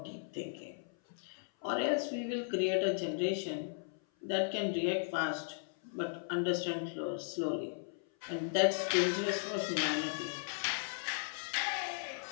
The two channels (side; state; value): right; silent; 53 dB below the other